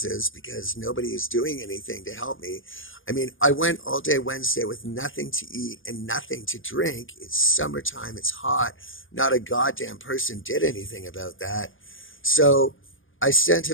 because nobody is doing anything to help me. I mean, I went all day Wednesday with nothing to eat and nothing to drink. It's summertime. It's hot. Not a goddamn person did anything about that. So I sent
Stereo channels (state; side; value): late; right; 0.58 ms